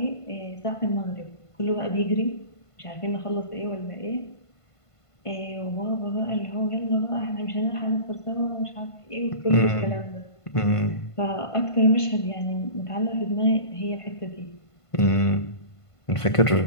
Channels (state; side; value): late; right; 1.5 ms